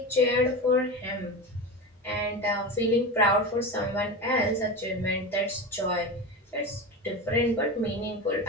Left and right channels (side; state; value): both; normal; correlation 0.24